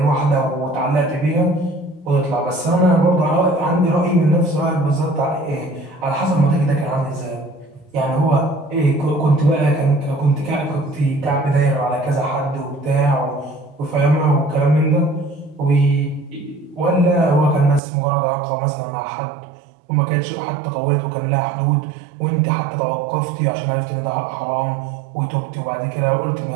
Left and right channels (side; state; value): left; drops out; at 17.8 s